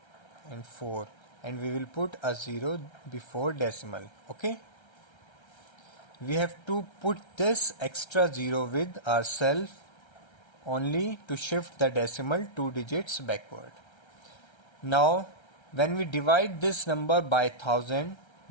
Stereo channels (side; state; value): right; late; 1.3 ms